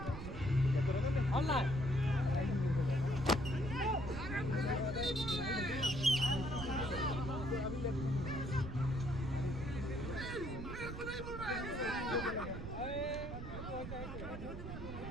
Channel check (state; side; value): noise; right; rumble, 7 dB below the sound